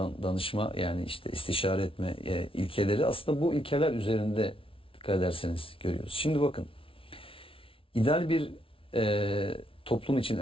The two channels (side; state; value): right; late; 0.26 ms